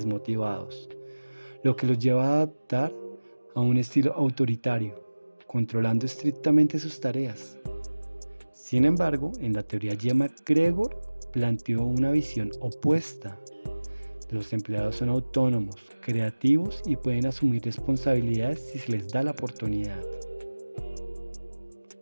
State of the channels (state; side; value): inverted; both; correlation -1.00